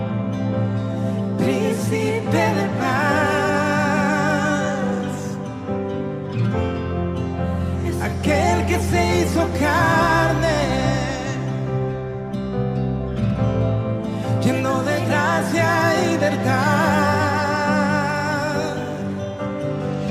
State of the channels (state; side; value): identical; both; correlation 1.00